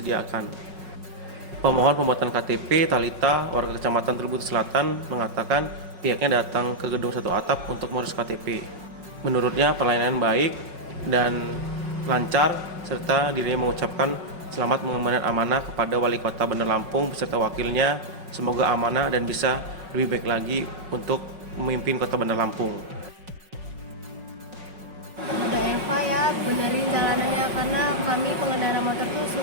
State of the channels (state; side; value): late; left; 5.4 ms